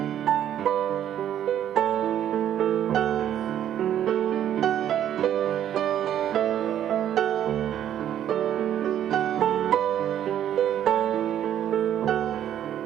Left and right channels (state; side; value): quieter; left; 10.7 dB